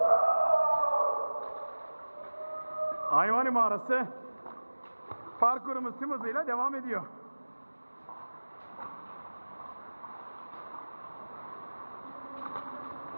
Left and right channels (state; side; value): inverted; both; correlation -1.00